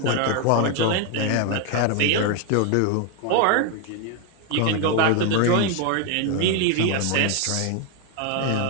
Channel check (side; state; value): both; different; correlation 0.01